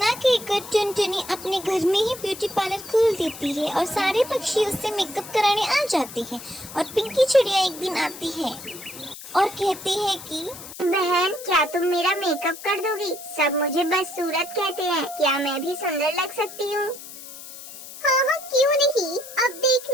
कहकर टुनटुनी अपने घर में ही ब्यूटी पार्लर खोल देती है और सारे पक्षी उससे मेकअप कराने आ जाते हैं। और पिंकी चिड़िया एक दिन आती है और कहती है कि बहन, क्या तुम मेरा मेकअप कर दोगी? सब मुझे बदसूरत कहते हैं, क्या मैं भी सुंदर लग सकती हूँ? हाँ, क्यों नहीं। अब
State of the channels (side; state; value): left; noise; hiss, 14 dB below the sound